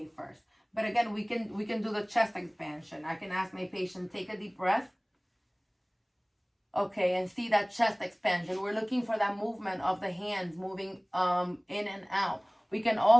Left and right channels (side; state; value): both; identical; correlation 1.00